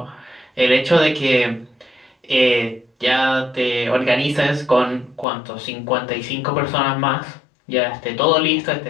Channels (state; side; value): drops out; right; at 5.2 s